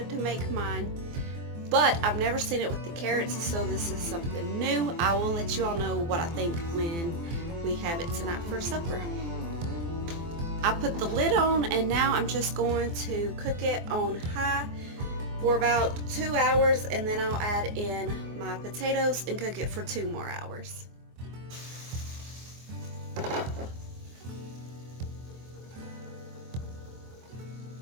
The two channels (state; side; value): late; left; 24 ms